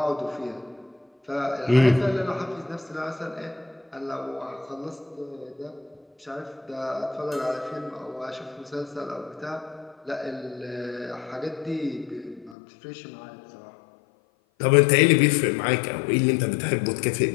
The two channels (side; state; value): right; drops out; at 12.6 s